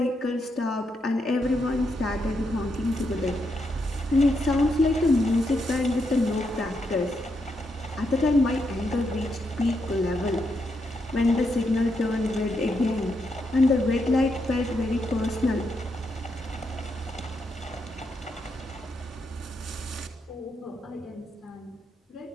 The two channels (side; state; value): both; normal; correlation 0.81